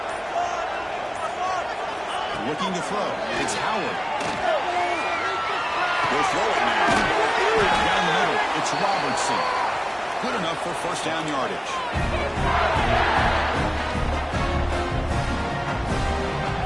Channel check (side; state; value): both; identical; correlation 1.00